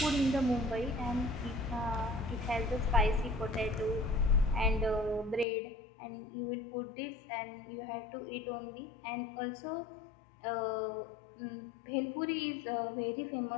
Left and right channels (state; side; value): drops out; right; at 5.5 s